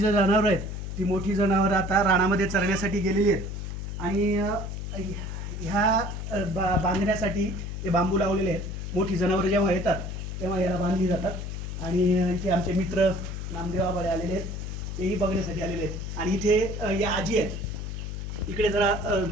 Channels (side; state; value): left; noise; hum, 6 dB below the sound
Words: जनावरं आहेत ती मोठी जनावरं आता रानामध्ये चरण्यासाठी गेलेली आहेत आणि ह्या बांधण्यासाठी ते बांबू लावलेले आहेत. मोठी जनावरं जेव्हा येतात तेव्हा याला बांधली जातात आणि इथे आमचे मित्र नामदेव आबाळे आलेले आहेत, तेही बघण्यासाठी आलेले आहेत. आणि इथे या आजी आहेत, इकडे जरा